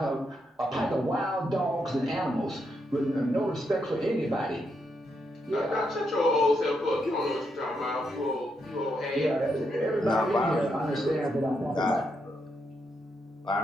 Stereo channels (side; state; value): both; normal; correlation 0.80